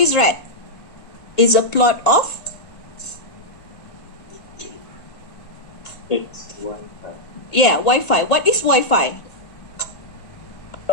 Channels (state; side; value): late; right; 1.9 ms